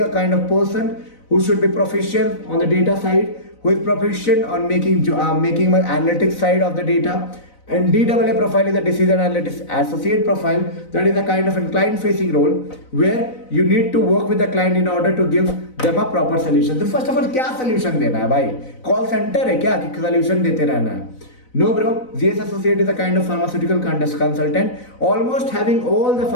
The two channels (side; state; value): right; late; 4.0 ms